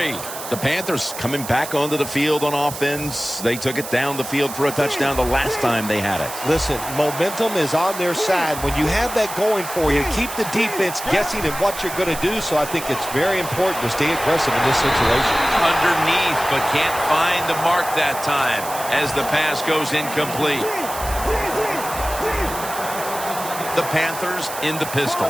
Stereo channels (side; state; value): right; noise; hiss, 10 dB below the sound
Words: The Panthers coming back onto the field on offense. They took it down the field for a touchdown the last time they had it. Listen, momentum is on their side. When you have that going for you, keep the defense guessing at what you're going to do. So I think it's very important to stay aggressive in this situation. Underneath, but can't find the mark that time as the pass goes incomplete. The Panthers in the